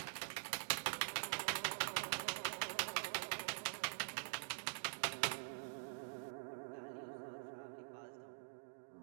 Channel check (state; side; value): silent; left; digital silence